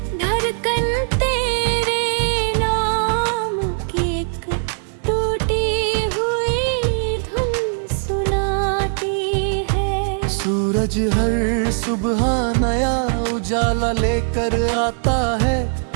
धड़कन तेरे नाम की एक टूटी हुई धुन सुनाती है। सूरज हर सुबह नया उजाला लेकर आता है,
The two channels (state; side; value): silent; left; digital silence